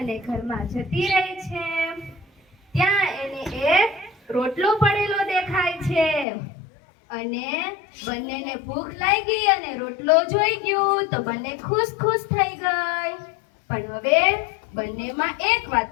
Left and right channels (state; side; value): drops out; right; at 6.2 s